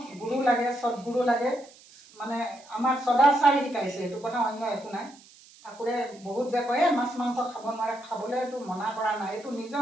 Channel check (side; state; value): right; noise; hiss, 24 dB below the sound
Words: গুৰু লাগে, সৎগুৰু লাগে। মানে আমাক সদাচাৰ শিকাইছে, এইটো কথা অন্য একো নাই। ঠাকুৰে বহুত যে কয় মাছ মাংস খাব নোৱাৰে, খাবলৈতো মনা কৰা নাই। এইটো নিজৰ